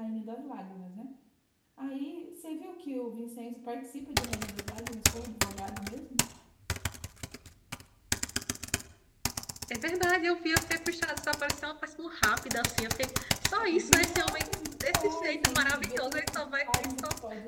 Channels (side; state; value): both; identical; correlation 1.00